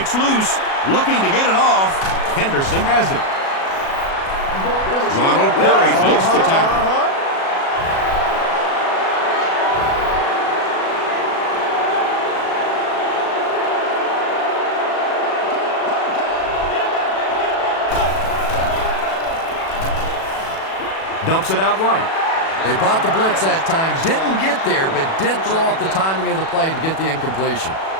loose, looking to get it off. Henderson has it. Ronald Curry makes the tackle. Dumps it out right. They bought the blitz that time, didn't get there, but did throw off the timing of the play to get the incompletion.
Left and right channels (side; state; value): right; late; 37 ms